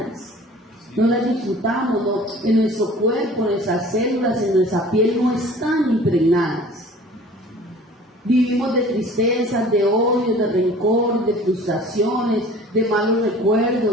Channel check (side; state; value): both; normal; correlation 0.46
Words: no las disfrutamos, no, en nuestro cuerpo, en nuestras células, en nuestra piel no están impregnadas. Vivimos de tristezas, de odio, de rencor, de frustraciones, de malos